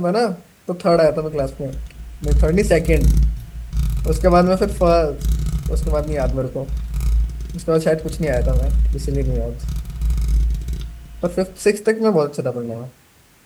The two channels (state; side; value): identical; both; correlation 1.00